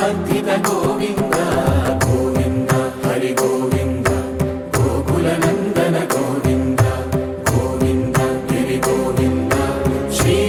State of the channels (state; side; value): identical; both; correlation 1.00